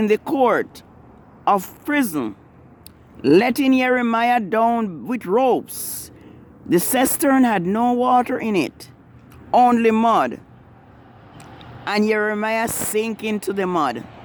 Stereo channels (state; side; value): identical; both; correlation 1.00